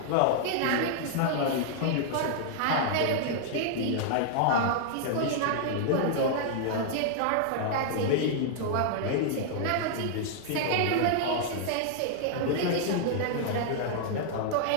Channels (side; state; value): both; different; correlation -0.01